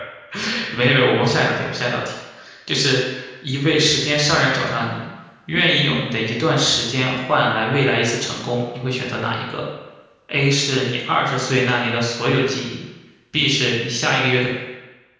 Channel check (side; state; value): both; identical; correlation 1.00